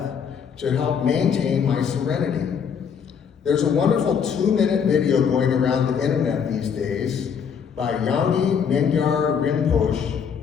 to help maintain my serenity. There's a wonderful 2-minute video going around the internet these days by Yangi Mingyar Rinpoche,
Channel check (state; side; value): quieter; right; 7.1 dB